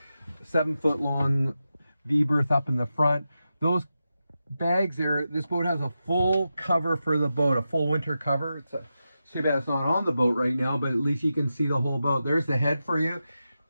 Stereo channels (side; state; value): both; inverted; correlation -0.90